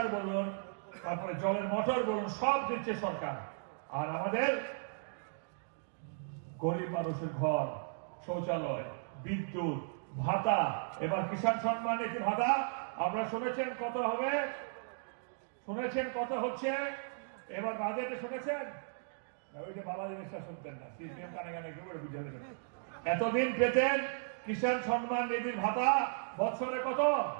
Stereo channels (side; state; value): left; silent; digital silence